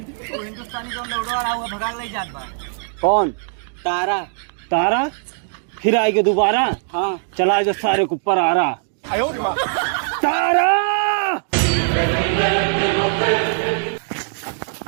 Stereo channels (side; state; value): left; silent; digital silence